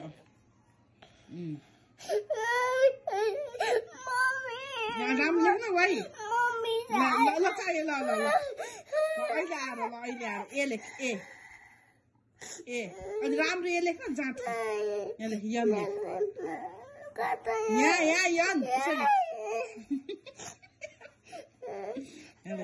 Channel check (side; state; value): both; identical; correlation 1.00